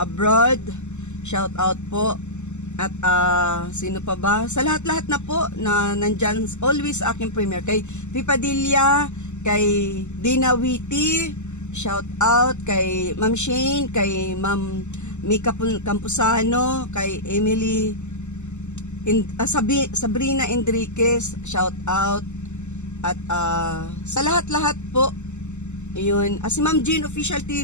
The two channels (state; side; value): late; right; 0.83 ms